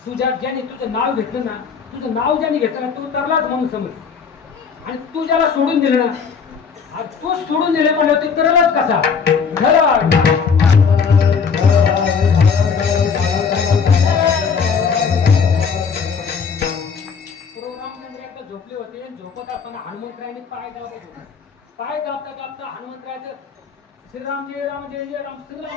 तुझ्या ज्याने तुझं नाव घेतलं ना तुझं नाव ज्याने घेतलं ना तू तरलाच म्हणून समज आणि तू ज्याला सोडून दिलं ना तू सोडून दिले म्हणलं तू तरलाच कसा झोपले होते झोपत असताना हनुमंतरायांनी पाय दाबता हनुमंतरायाचं श्रीराम जय राम जय जय राम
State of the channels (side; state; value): right; quieter; 6.0 dB